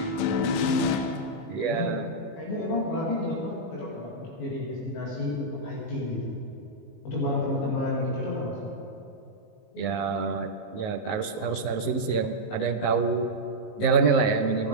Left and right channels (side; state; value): right; late; 19 ms